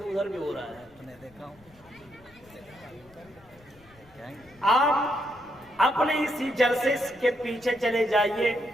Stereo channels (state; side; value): noise; left; rumble, 27 dB below the sound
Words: بھی ہو رہا ہے، آپ اپنے اسی جلسے کے پیچھے چلے جائیے،